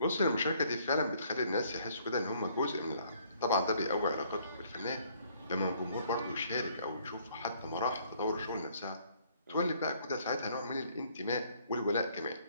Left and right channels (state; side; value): inverted; both; correlation -0.63